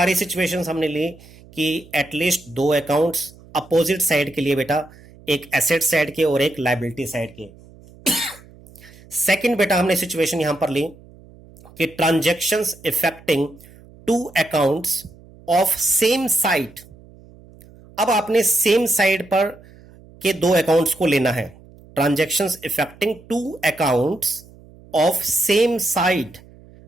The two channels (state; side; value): noise; right; hum, 23 dB below the sound